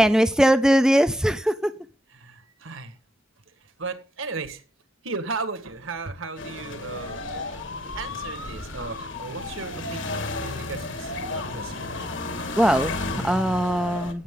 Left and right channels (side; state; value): both; normal; correlation 0.78